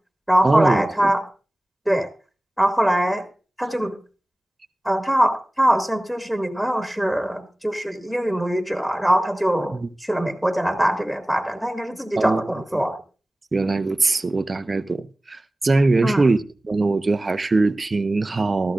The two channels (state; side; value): normal; both; correlation 0.97